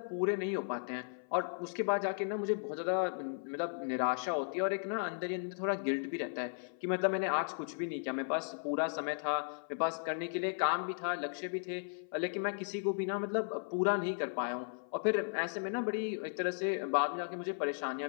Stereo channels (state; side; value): silent; right; 54 dB below the other